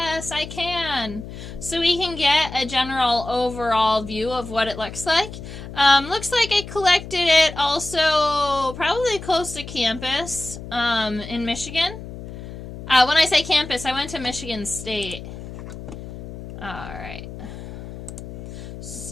I can. So we can get a general overall view of what it looks like. Looks like I collected it also probably close to campus in Michigan. When I say campus, I went to Michigan State. Alright.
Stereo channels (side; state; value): left; noise; hum, 11 dB below the sound